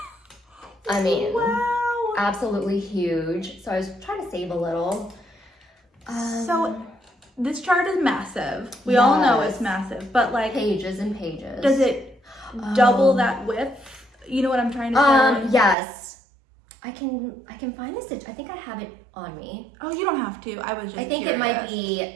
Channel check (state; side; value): drops out; left; at 15.8 s